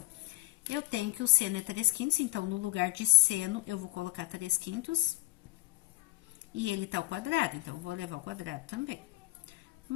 Eu tenho que o seno é 3/5, então, no lugar de seno, eu vou colocar 3/5. E ele tá ao quadrado, então, eu vou levar ao quadrado também.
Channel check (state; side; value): quieter; right; 19.6 dB